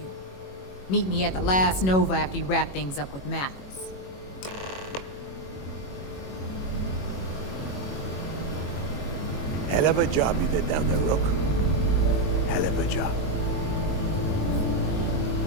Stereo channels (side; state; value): right; late; 21 ms